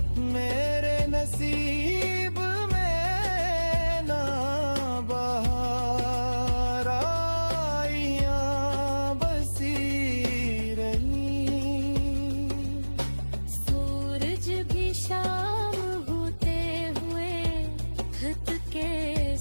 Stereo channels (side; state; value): both; inverted; correlation -1.00